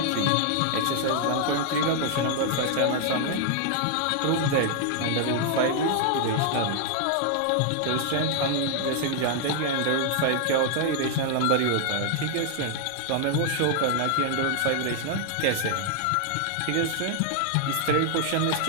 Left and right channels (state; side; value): different; both; correlation 0.00